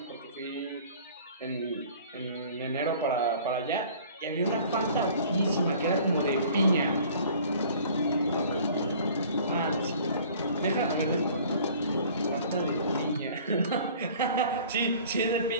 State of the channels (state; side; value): inverted; both; correlation -0.49